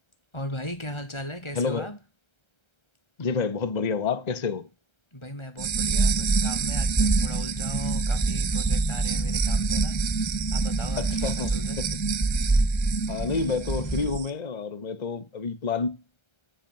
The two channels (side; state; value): right; late; 1.3 ms